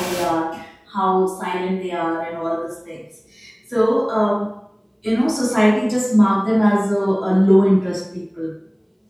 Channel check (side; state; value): both; identical; correlation 1.00